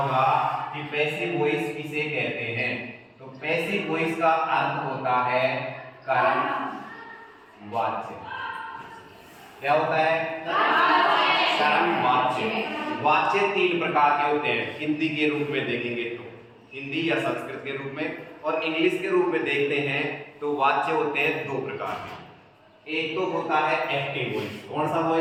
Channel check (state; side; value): identical; both; correlation 1.00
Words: कि पैसिव वॉइस किसे कहते हैं। तो पैसिव वॉइस का अर्थ होता है कर्म वाच्य। क्या होता है? कर्म वाच्य। वाच्य 3 प्रकार के होते हैं। हिंदी के रूप में देखेंगे तो हिंदी या संस्कृत के रूप में, और इंग्लिश के रूप में देखते हैं तो वाच्य होते हैं 2 प्रकार के। एक तो होता है एक्टिव वॉइस। कौन सा